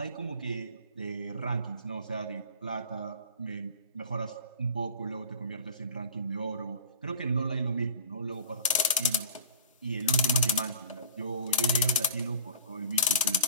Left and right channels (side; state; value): both; inverted; correlation -0.40